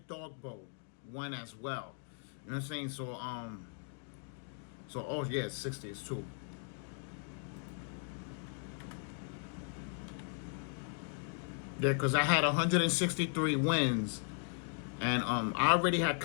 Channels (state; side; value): silent; right; 53 dB below the other